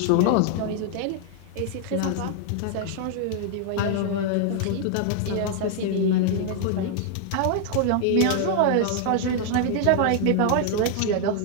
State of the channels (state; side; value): different; both; correlation 0.00